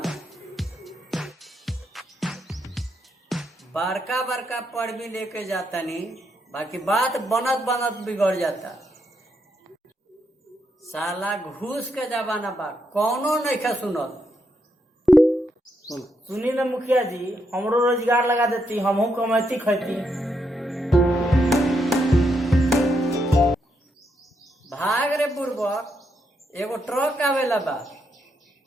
बड़का बड़का पढ़ भी लेके जाता नहीं, बाकी बात बनत बनत बिगड़ जाता। साला घूस के जमाना बा, कौनो नहीं खा सुनल। सुनी ना मुखिया जी, हमरो रोजगार लगा देती, हमहू कमाती खैती। भाग रे बुढ़बा, एगो ट्रक आवेला बा,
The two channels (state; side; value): normal; both; correlation 0.79